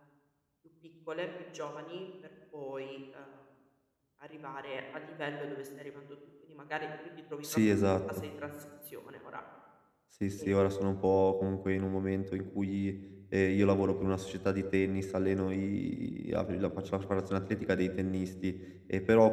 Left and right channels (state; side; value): identical; both; correlation 1.00